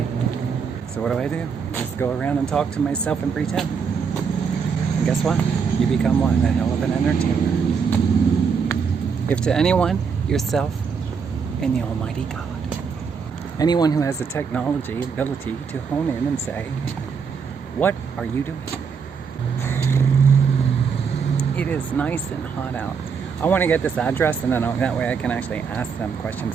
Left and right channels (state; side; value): quieter; left; 6.0 dB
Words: So what do? Just go around and talk to myself and pretend. And guess what? You become what? A hell of an entertainer. If to anyone, yourself, and the Almighty God. Anyone who has the technology ability to hone in and say, what are you doing? It is nice and hot out. I want to get this address, and then that way I can actually ask them